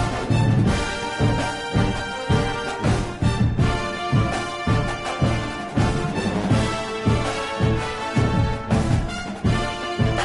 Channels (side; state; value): both; identical; correlation 1.00